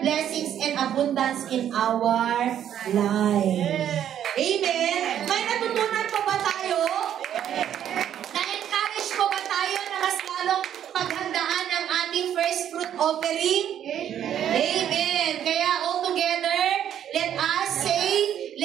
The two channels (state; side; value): quieter; left; 10.1 dB